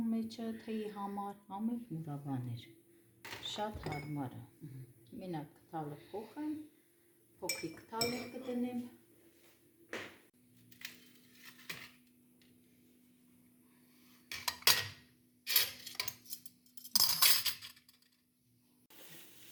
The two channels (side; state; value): both; identical; correlation 1.00